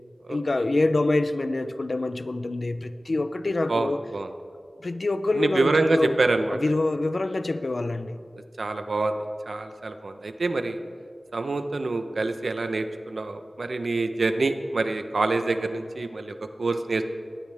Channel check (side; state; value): both; normal; correlation 0.95